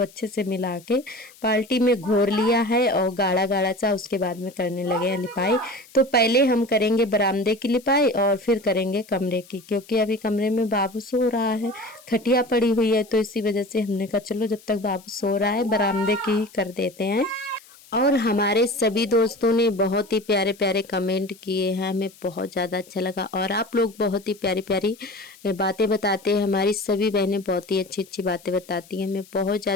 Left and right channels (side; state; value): left; noise; hiss, 24 dB below the sound